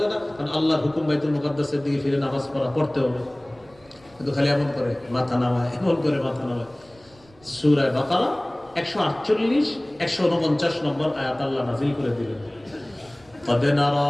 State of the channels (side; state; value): right; noise; rumble, 28 dB below the sound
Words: না? কারণ আল্লাহর হুকুম বাইতুল মুকাদ্দাসের দিকে ফিরে নামাজ পড়তে হবে। কিন্তু খালি এমন করে মাথা নামায়, এমন করে মাথা নামায়। সূরা বাকারা 148-149 নম্বর আয়াত আল্লাহ নাযিল করে দিলেন, قد